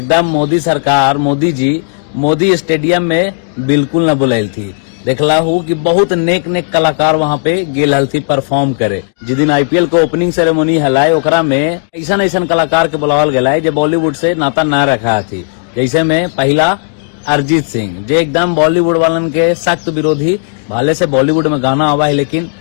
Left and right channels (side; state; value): right; silent; digital silence